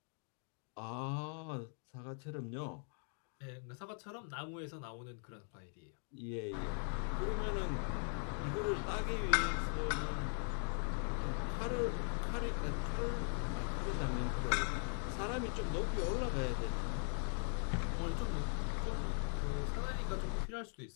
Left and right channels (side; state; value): right; silent; 51 dB below the other